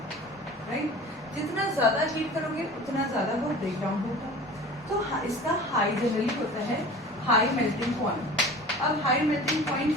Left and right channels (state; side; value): normal; both; correlation 0.39